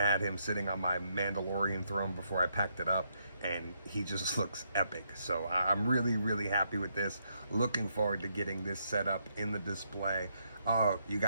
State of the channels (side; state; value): both; inverted; correlation -0.76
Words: him sitting on my Mandalorian throne before I packed it up, and he just looks epic. So I'm really happy with this. Looking forward to getting this set up in the display. Oh, you